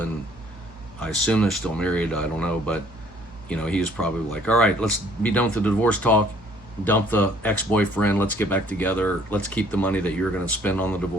I assume they're still married, I don't know, but he was probably like, all right, let's be done with the divorce talk, dump the ex-boyfriend, let's get back together, let's keep the money that you're going to spend on the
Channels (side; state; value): both; normal; correlation 0.59